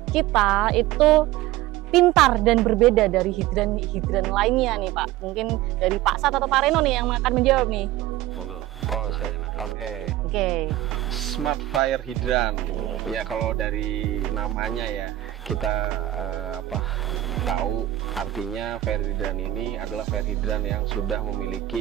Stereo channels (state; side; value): quieter; left; 14.9 dB